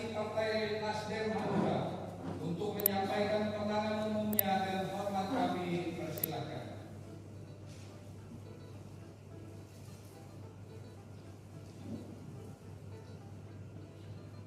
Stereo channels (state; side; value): identical; both; correlation 1.00